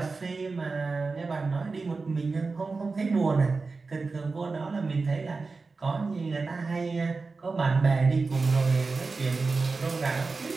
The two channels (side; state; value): left; quieter; 4.1 dB